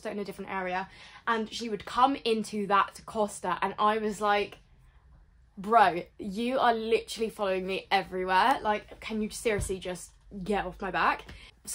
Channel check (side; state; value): both; identical; correlation 1.00